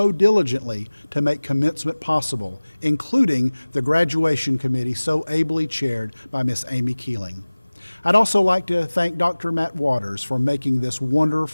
diligently to make commencement possible, including the graduation committee so ably chaired by Miss Amy Keeling. I'd also like to thank Dr. Matt Waters for making this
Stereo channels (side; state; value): both; inverted; correlation -1.00